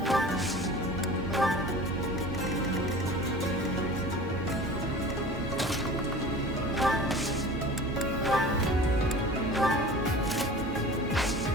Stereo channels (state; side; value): normal; both; correlation 0.40